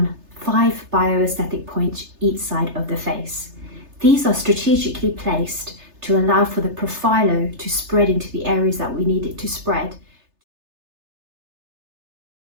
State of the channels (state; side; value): late; left; 3.3 ms